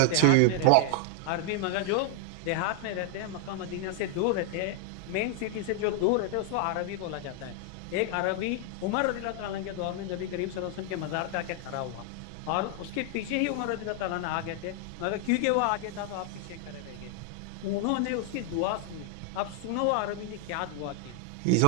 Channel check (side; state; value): both; different; correlation 0.00